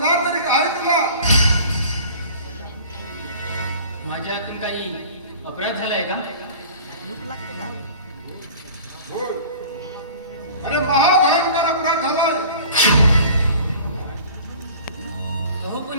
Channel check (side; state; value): both; inverted; correlation -0.44